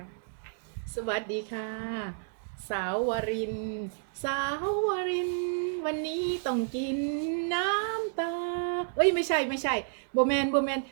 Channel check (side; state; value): left; silent; digital silence